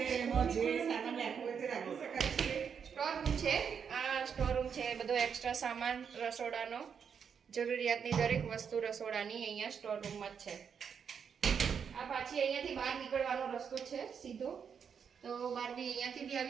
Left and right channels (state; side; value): quieter; left; 7.0 dB